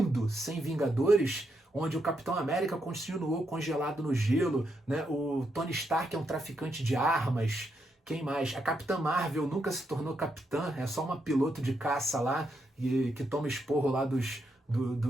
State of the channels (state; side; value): normal; both; correlation 0.80